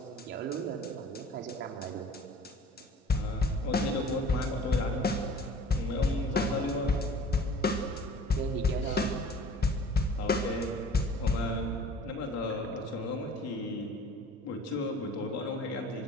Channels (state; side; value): normal; both; correlation 0.46